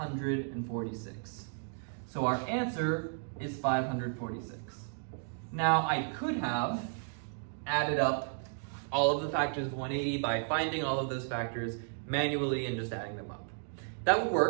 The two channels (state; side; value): silent; left; digital silence